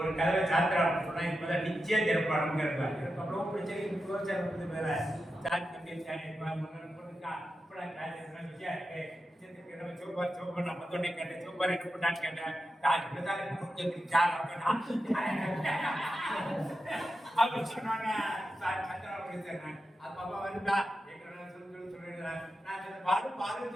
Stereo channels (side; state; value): both; normal; correlation 0.90